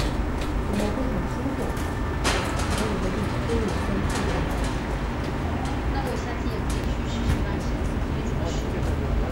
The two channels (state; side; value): identical; both; correlation 1.00